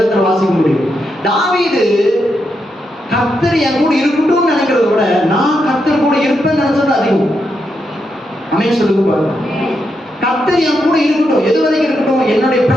வாசிக்க முடியும். தாவீது கர்த்தர் என் கூட இருக்கட்டும்னு நினைக்கிறத விட நான் கர்த்தர் கூட இருப்பேன்னு நினைச்சது அதிகம். ஆமென் சொல்லுங்க பாருங்க. கர்த்தர் என் கூட இருக்கட்டும், எது வரைக்கும் இருக்கட்டும்? என்னுடைய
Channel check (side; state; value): both; normal; correlation 0.83